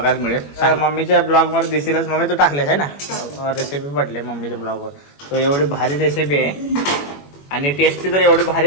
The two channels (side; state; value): right; late; 21 ms